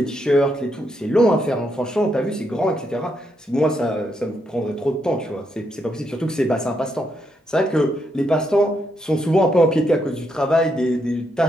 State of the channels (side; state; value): both; normal; correlation 0.79